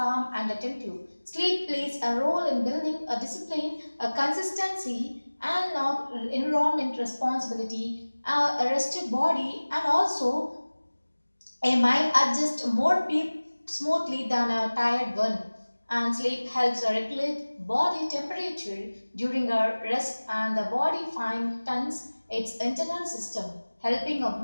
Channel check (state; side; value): inverted; both; correlation -1.00